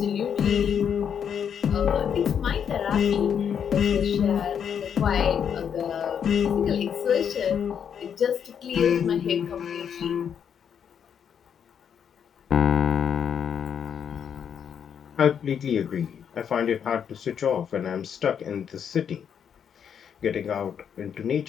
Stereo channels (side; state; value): right; quieter; 7.9 dB